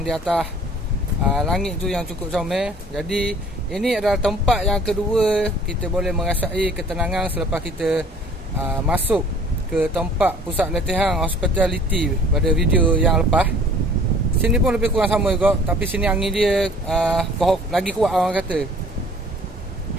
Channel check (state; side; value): normal; both; correlation 0.52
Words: di atas langit tu yang cukup comel. Jadi ini adalah tempat yang kedua kita boleh merasai ketenangan selepas kita masuk ke tempat pusat latihan hospitality pada video yang lepas. Sini pun lebih kurang sama juga, tapi sini angin dia lagi kuat orang kata.